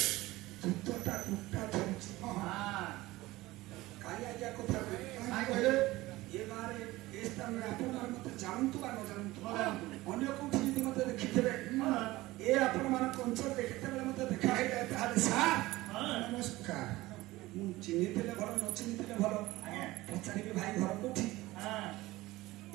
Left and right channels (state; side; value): quieter; left; 18.7 dB